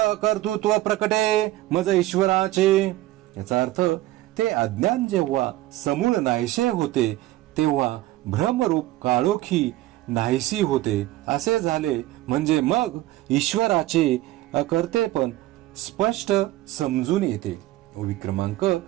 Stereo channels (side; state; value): left; quieter; 16.2 dB